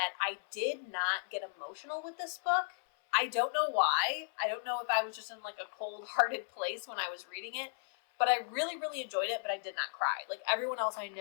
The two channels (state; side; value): silent; right; 54 dB below the other